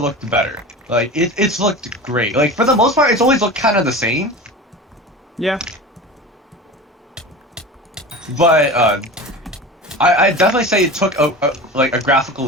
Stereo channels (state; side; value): normal; both; correlation 0.32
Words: better. Like it's looked great. Like for the most part, it's always looked kind of the same. Yeah. But I definitely say it took a graphical